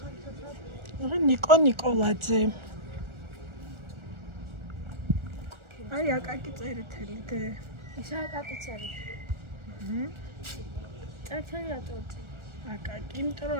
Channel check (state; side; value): late; left; 1.4 ms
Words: ნიკო ნიკოლაძე. აი აკაკი წერეთელი და ესა აკაკი წერეთელი. წერეთელი რატოა? აკაკი, იმიტომ რომ